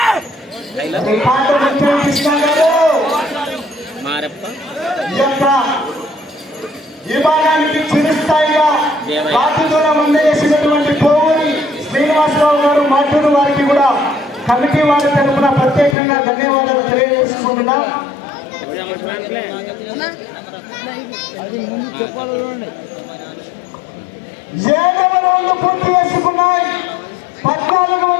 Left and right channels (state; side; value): drops out; right; at 16.0 s